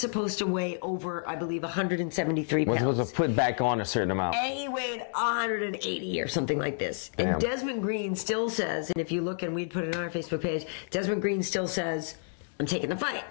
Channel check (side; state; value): right; silent; digital silence